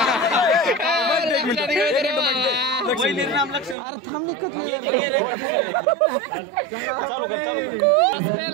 अरे थांबली कतली चालू कर.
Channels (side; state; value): left; drops out; at 3.8 s